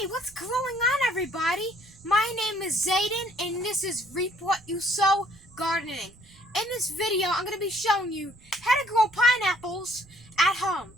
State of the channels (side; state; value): right; noise; rumble, 25 dB below the sound